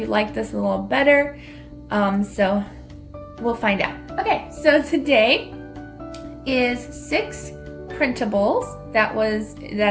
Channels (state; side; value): identical; both; correlation 1.00